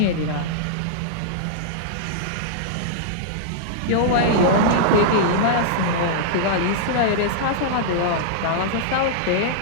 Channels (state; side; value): different; both; correlation -0.02